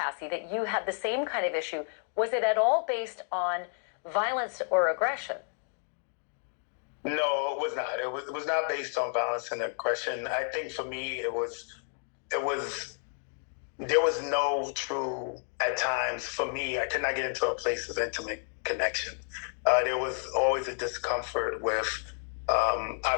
that you had the same kind of issue. Was it at all based on violence or aggression? No, it was not. It was not based on violence and aggression. I think for me, there was no true, at times, for me, I could not get into a place of intimate connection. There was always a discomfort with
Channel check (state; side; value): silent; right; 57 dB below the other